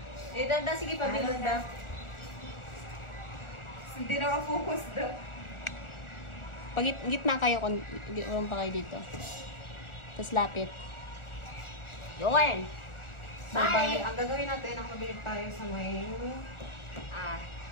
Eh, dada, sige, pabilog daw. Hindi na ka-focus daw. Pag gitna kayo, urong pa kayo dito. Tapos lapit. Yun! So, bali, ang gagawin natin, nakapabilig tayo sa may...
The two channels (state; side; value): late; right; 1.4 ms